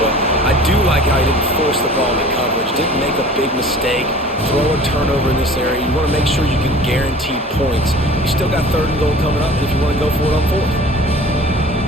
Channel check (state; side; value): normal; both; correlation 0.44